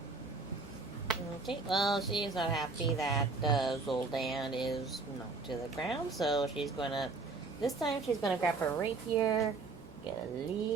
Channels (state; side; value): quieter; left; 3.9 dB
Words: Okay, well, she's not happy that Zoldan is knocked to the ground, so she's gonna. This time she's gonna grab her rapier, get a